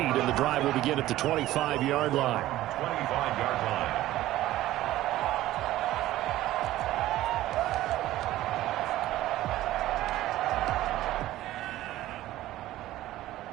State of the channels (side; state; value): left; quieter; 15.1 dB